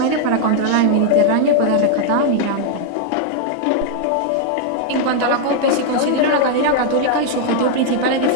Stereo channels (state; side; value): different; both; correlation 0.00